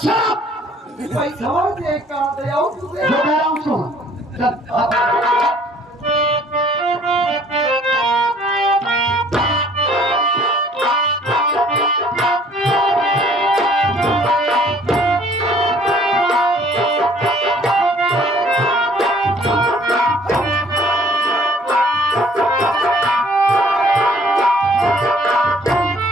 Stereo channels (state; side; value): normal; both; correlation 0.57